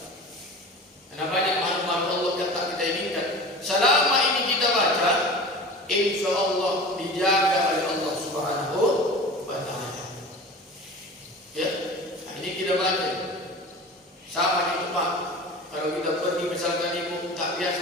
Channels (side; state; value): both; normal; correlation 0.36